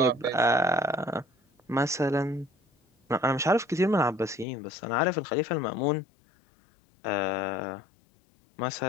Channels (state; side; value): drops out; right; at 4.5 s